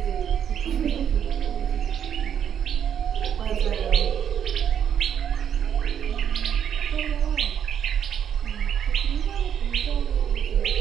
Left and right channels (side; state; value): left; quieter; 8.9 dB